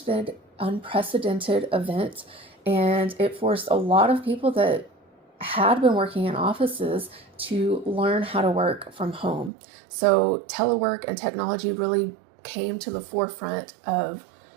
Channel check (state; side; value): drops out; left; at 9.5 s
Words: event, and it forced a lot of people that had been working in offices to learn how to work from home. So telework and technology really came to the forefront of